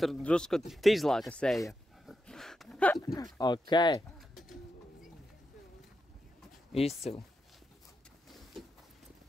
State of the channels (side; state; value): both; normal; correlation 0.87